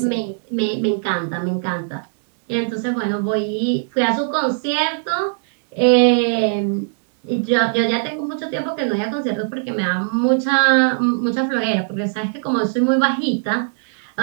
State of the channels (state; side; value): silent; left; digital silence